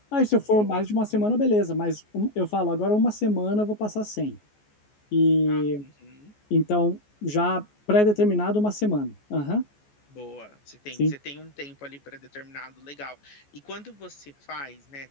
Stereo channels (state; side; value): late; right; 14 ms